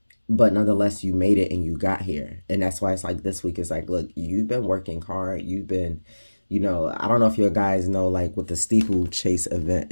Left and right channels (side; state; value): both; inverted; correlation -1.00